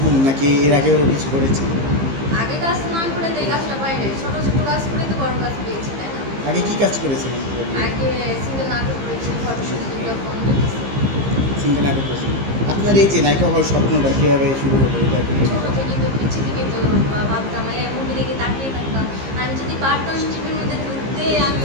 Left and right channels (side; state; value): left; late; 15 ms